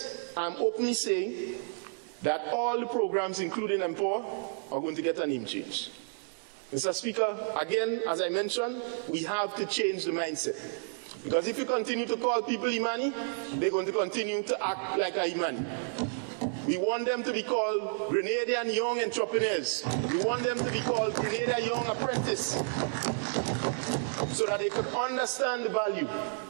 I'm openly saying that all the programs, including Empower, are going to get a name change. Mr. Speaker, again, as I mentioned, we have to change the mindset. Because if you continue to call people Imani, they're going to continue to act like a Imani. We want them to be called Grenadian Young Entrepreneurs. We want them to be called Grenadian Young Apprentice, so that they can understand the value.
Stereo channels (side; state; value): left; silent; digital silence